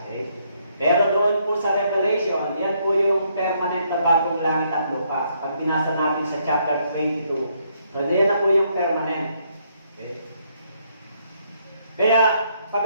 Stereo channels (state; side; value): inverted; both; correlation -0.72